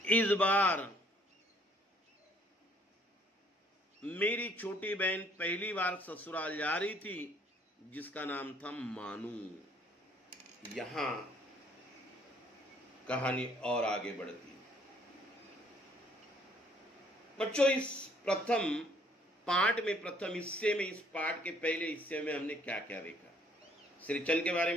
इस बार मेरी छोटी बहन पहली बार ससुराल जा रही थी, जिसका नाम था मानू। यहां कहानी और आगे बढ़ती। बच्चों, इस प्रथम पाठ में, प्रथम हिस्से में, इस पाठ के पहले हिस्से में हमने क्या क्या देखा? सिरचन के बारे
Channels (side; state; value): both; normal; correlation 0.62